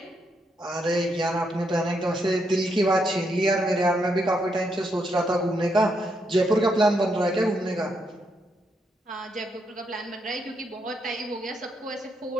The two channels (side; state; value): both; normal; correlation 0.79